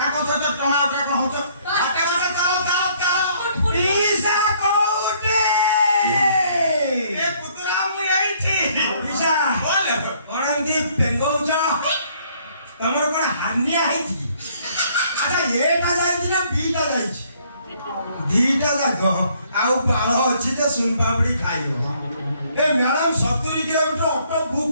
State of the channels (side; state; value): both; inverted; correlation -0.63